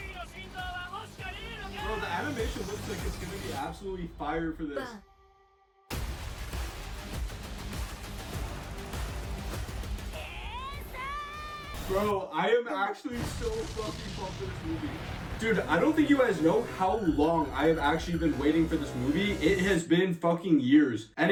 ーの心臓は欲しかねえのか Bro, the animation looks like it's gonna be absolutely fire for this. Bro, I am actually so fucking pumped for this movie. Dude, I don't think you guys know how long I have actually been waiting for this movie. It has been fucking years.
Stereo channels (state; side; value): identical; both; correlation 1.00